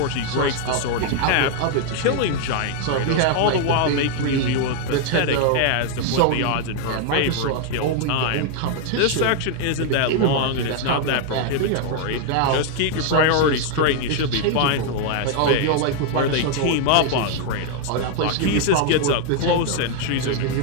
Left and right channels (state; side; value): different; both; correlation 0.00